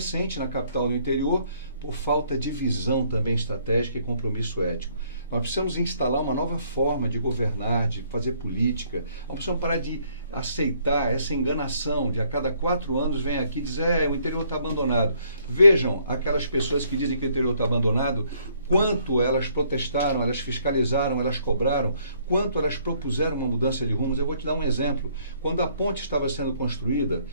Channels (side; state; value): both; inverted; correlation -0.66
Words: na capital e no interior, por falta de visão também estratégica e compromisso ético. Nós precisamos instalar uma nova forma de governar, de fazer política. Nós precisamos parar de aceitar essa enganação de a cada 4 anos vem aqui dizer o interior está abandonado. Vejam aquelas pessoas que dizem que o interior está abandonado, quanto elas protestaram, elas fiscalizaram, elas cobraram, quanto elas propuseram uma mudança de rumos. Eu vou te dar um exemplo. Quando a ponte estava sendo construída,